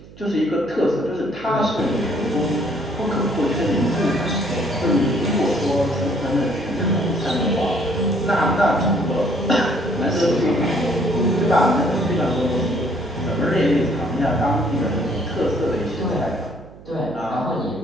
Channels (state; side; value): noise; right; hum, 20 dB below the sound